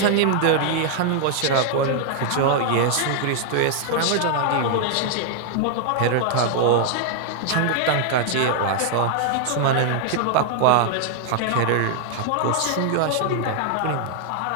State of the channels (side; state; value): both; different; correlation 0.00